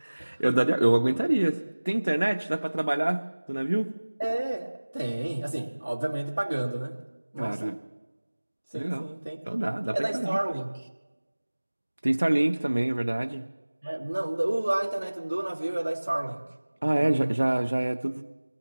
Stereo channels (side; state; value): both; inverted; correlation -1.00